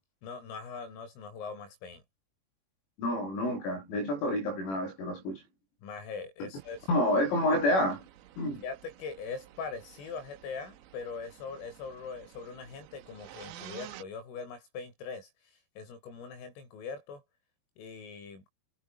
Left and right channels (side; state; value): right; late; 21 ms